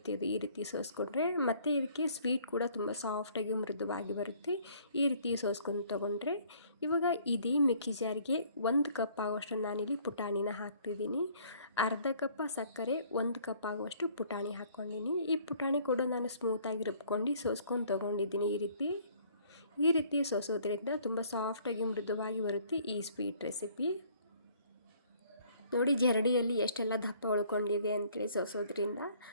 ಇದು ಈ ರೀತಿ ಸೋಸ್ಕೊಂಡ್ರೆ ಮತ್ತು ಇದಕ್ಕೆ ಸ್ವೀಟ್ ಕೂಡ ತುಂಬ ಸಾಫ್ಟಾಗಿ ಮೃದುವಾಗಿ ಬರುತ್ತೆ. ಈ ರೀತಿ ಸೋಸ್ಕೊಂಡು ತೊಗೊಂಡ್ರೆ ಇವಾಗ ಇದೇ ಮಿಕ್ಸಿ ಜಾರಿಗೆ 1 ಕಪ್ ಆಗುವಷ್ಟು ನಾನಿಲ್ಲಿ ಪುಟಾಣಿನ ಹಾಕ್ತಿದ್ದೀನಿ. ಅರ್ಧ ಕಪ್ ಸಕ್ಕರೆ, 1 ಕಪ್ ಆಗುವಷ್ಟು ಪುಟಾಣಿ ಹಾಕ್ಕೊಂಡಿನಿ. ಈ ಪುಟಾಣಿ ಕೂಡ ನಾನು ಸ್ಮೂತಾಗಿ ರುಬ್ಕೊಂಡು ಸೋಸ್ಕೊಂಡು ತೊಗೊಂಡಿದ್ದೀನಿ. ಈ ರೀತಿ ಸೋಸೋದ್ರಿಂದ ತುಂಬ ಸಾಫ್ಟಾಗಿ ಮೃದುವಾಗಿ ಬರುತ್ತೆ ಈ ಸ್ವೀಟ್ ರೆಸಿಪಿ. ನೋಡಿ ಜರಡಿಯಲ್ಲಿ ಎಷ್ಟೆಲ್ಲ ದಪ್ಪ ಉಳ್ಕೊಂಡಿದೆ ಅಂತೇಳಿ ಸೋಸೋದ್ರಿಂದ.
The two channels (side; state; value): both; inverted; correlation -0.58